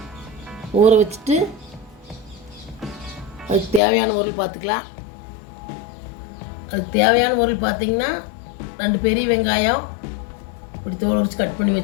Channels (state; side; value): drops out; right; at 3.8 s